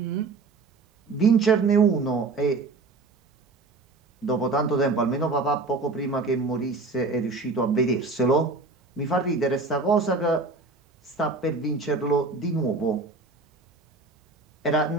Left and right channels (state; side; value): quieter; left; 3.7 dB